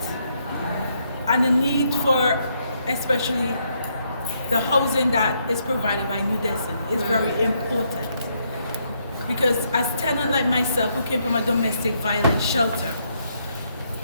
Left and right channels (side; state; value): both; inverted; correlation -0.75